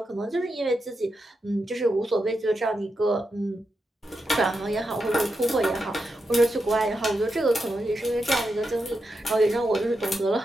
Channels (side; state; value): both; normal; correlation 0.86